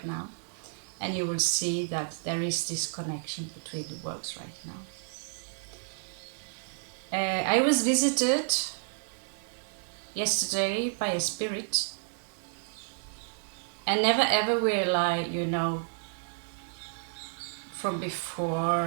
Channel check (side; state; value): left; silent; digital silence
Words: now, and you will see that there is this connection between the worlds right now. I was visited yesterday by a spirit, and never ever will I, from